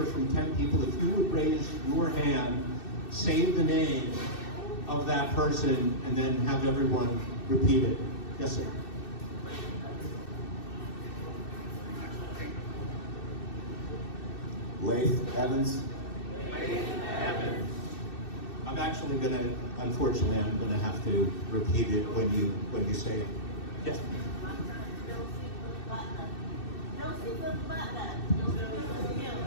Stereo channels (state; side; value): late; right; 2.6 ms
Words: from 10 people. If you would raise your hand, say the name of that person, and then have everyone repeat it. Yes, sir. Laith Evans. I'm actually unfortunately, I'm gonna have to repeat it when you say it. Yes.